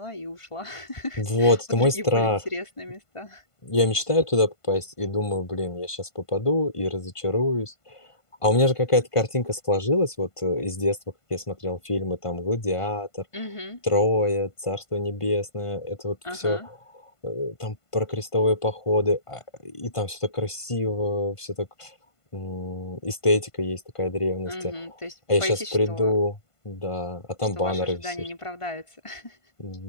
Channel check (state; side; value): late; right; 1.5 ms